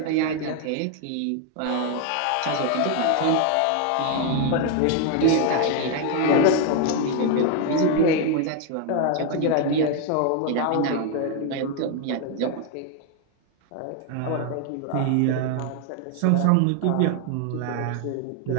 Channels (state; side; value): different; both; correlation 0.01